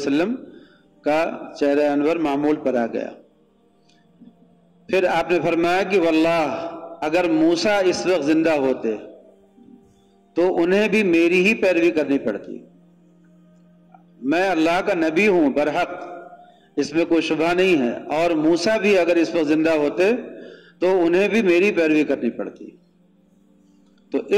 کا چہرہ انور معمول پر آ گیا۔ پھر آپ نے فرمایا کہ واللہ اگر موسیٰ اس وقت زندہ ہوتے تو انہیں بھی میری ہی پیروی کرنی پڑتی، میں اللہ کا نبی ہوں برحق، اس میں کوئی شبہ نہیں ہے، اور موسیٰ بھی اگر اس وقت زندہ ہوتے تو انہیں بھی میری پیروی کرنی پڑتی۔ تو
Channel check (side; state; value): both; identical; correlation 1.00